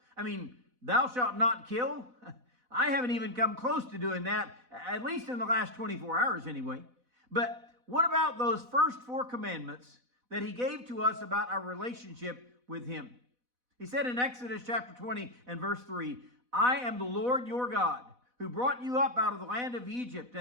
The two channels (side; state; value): left; late; 4.0 ms